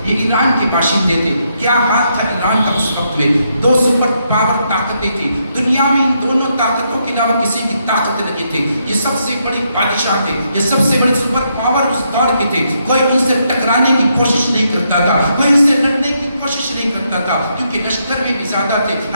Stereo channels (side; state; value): both; inverted; correlation -0.78